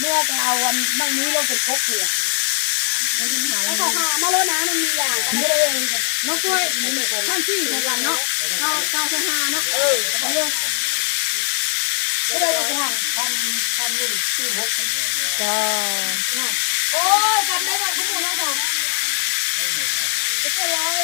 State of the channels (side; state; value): right; silent; digital silence